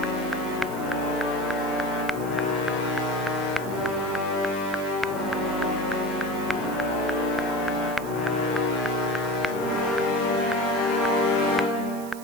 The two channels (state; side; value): noise; right; hiss, 16 dB below the sound